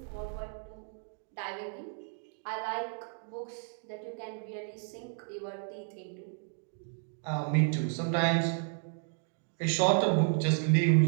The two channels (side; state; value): left; silent; 56 dB below the other